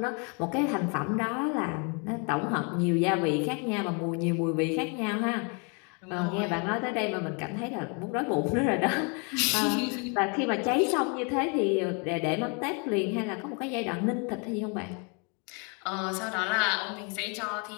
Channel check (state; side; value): quieter; right; 34.9 dB